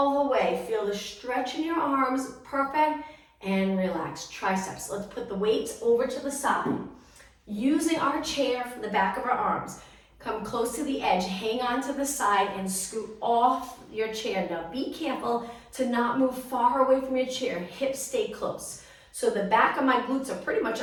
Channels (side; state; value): both; identical; correlation 1.00